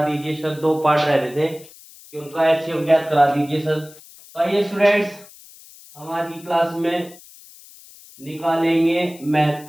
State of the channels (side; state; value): left; noise; hiss, 21 dB below the sound